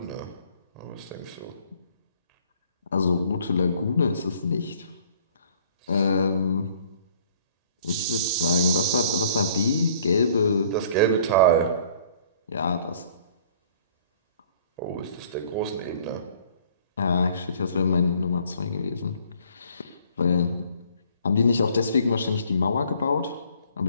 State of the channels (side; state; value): both; inverted; correlation -0.57